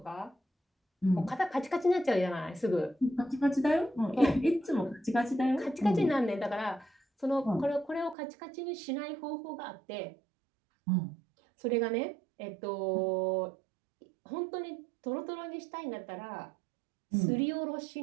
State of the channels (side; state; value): left; drops out; at 8.2 s